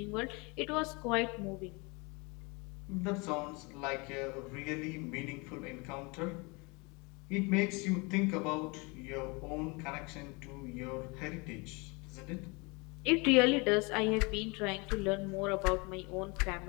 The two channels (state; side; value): quieter; right; 28.4 dB